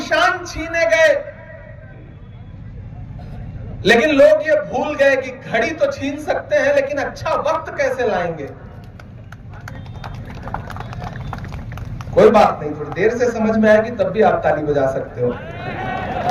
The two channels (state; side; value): identical; both; correlation 1.00